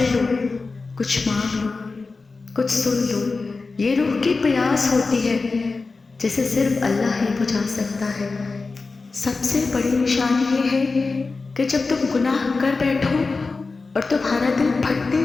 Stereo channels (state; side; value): quieter; right; 4.0 dB